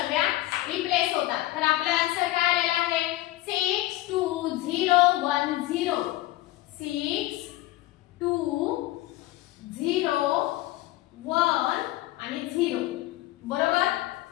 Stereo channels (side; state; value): right; quieter; 16.9 dB